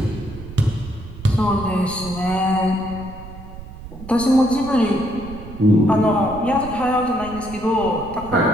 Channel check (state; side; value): noise; right; rumble, 14 dB below the sound